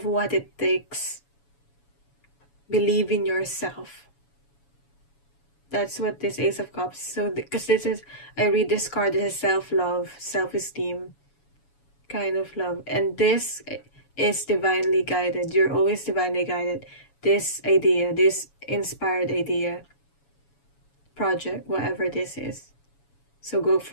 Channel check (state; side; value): late; right; 7.1 ms